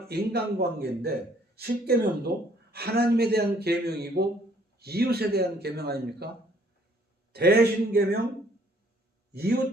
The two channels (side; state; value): both; normal; correlation 0.62